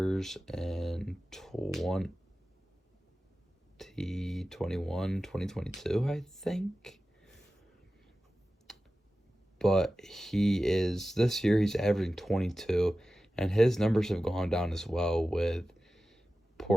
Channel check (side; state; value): both; normal; correlation 0.95